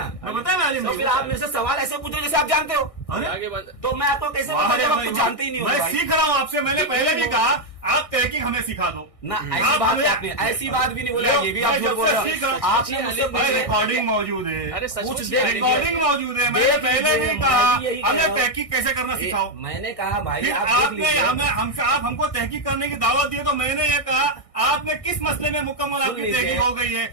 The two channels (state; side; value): late; right; 1.6 ms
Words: मैं बताया मैं आलिम तो नहीं फिर हूँ। आप मेरे से सवाल ऐसे पूछ रहे हो जैसे आप जानते हो। अरे आगे बंद। तो मैं आपको कैसे वाह बताऊं रे जब आप भाई, कुछ जानते ही नहीं हो मैं भाई? सीख रहा हूँ आपसे। मैंने पहले भी कहा आप तहकीक हमें सिखा दो ना आप ऐसी बात हमें- नहीं, ऐसी बात भी नहीं बोला। ये भी आप मैं झूठ जब बोल से रहे सीख हो। रहा हूँ, आपने मुझसे भाई पूछा, रिकॉर्डिंग मौजूद है, अरे सच कुछ पूछ देर लिया। रिकॉर्डिंग मौजूद है। मैंने देख पहले लीजिए, भी मैं कहा भी यही कह हमें रहा हूँ। तहकीक कैसे करना सिखाओ। मैंने कहा भाई फिर आप देख आपने लीजिए। आप हमको तहकीक करने की दावत दी, तो मैंने ये कहा आपने किस मसले में मुकम्मल आपकी लीजिए। तहकीक हो गई है।